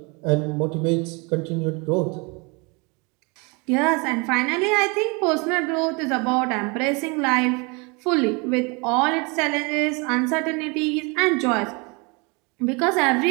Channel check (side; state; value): left; quieter; 29.8 dB